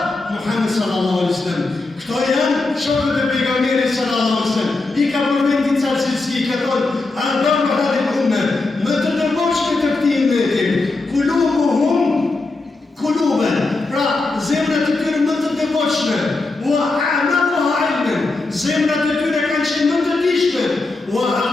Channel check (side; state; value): right; quieter; 3.4 dB